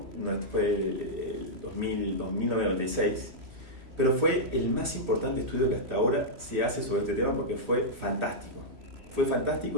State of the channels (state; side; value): late; left; 3.0 ms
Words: fue el 1996, pero fue el más importante estudio que hasta ahora se hace sobre este tema porque fue fantástico. Fue